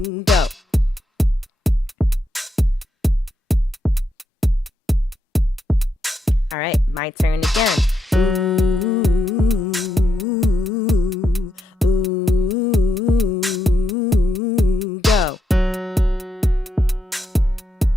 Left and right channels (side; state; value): both; normal; correlation 0.82